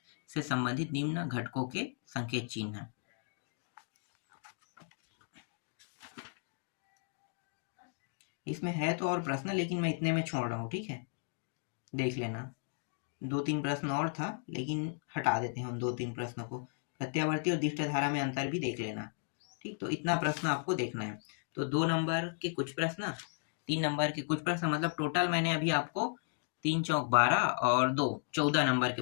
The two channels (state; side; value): silent; right; 54 dB below the other